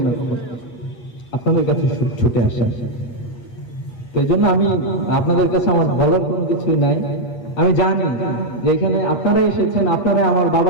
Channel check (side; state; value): right; late; 8.8 ms